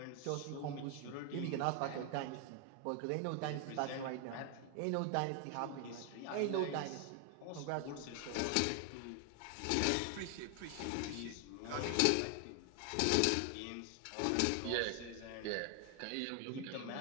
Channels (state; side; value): different; both; correlation 0.00